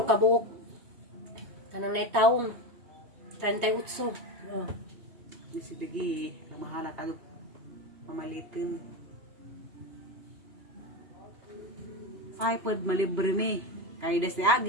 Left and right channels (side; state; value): left; late; 3.2 ms